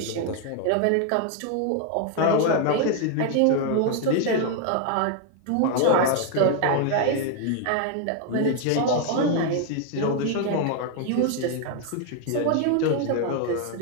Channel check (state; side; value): different; both; correlation 0.00